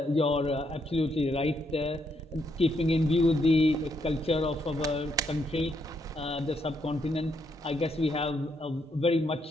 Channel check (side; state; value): both; normal; correlation 0.76